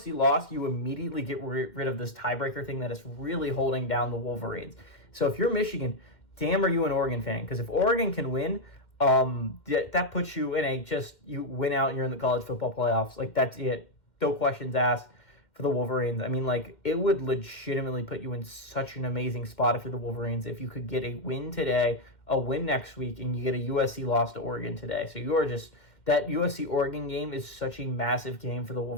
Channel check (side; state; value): right; late; 2.1 ms